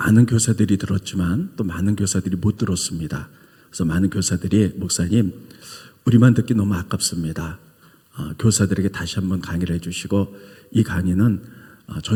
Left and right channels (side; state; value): both; identical; correlation 1.00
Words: 교사들이 들었지만 또 많은 교사들이 못 들었습니다. 그래서 많은 교사들이 목사님 우리만 듣기 너무 아깝습니다. 교사들에게 다시 한번 강의를 해주시고 이 강의는